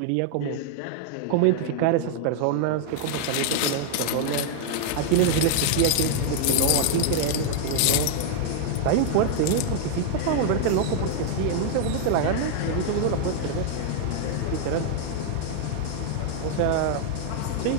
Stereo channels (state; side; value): different; both; correlation 0.00